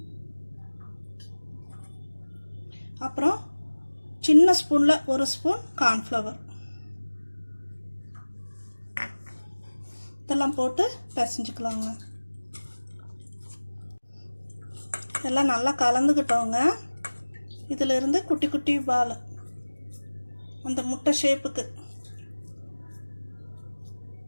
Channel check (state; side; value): inverted; both; correlation -1.00